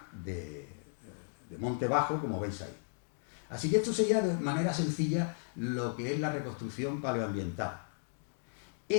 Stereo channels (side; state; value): right; silent; digital silence